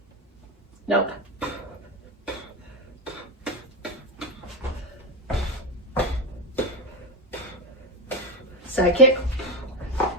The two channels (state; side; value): normal; both; correlation 0.13